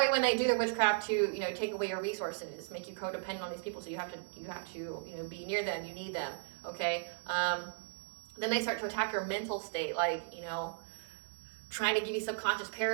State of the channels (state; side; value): silent; left; digital silence